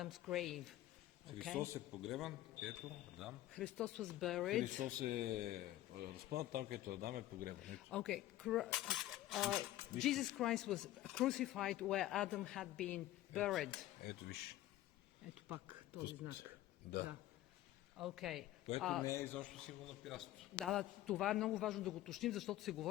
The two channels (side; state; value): right; quieter; 14.7 dB